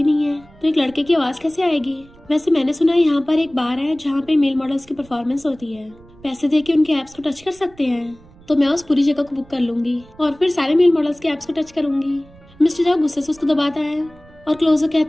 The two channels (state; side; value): noise; right; rumble, 25 dB below the sound